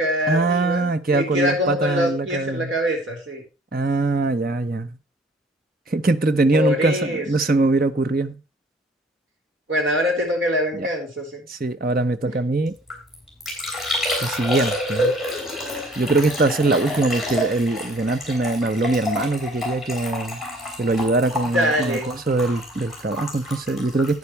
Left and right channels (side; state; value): both; normal; correlation 0.55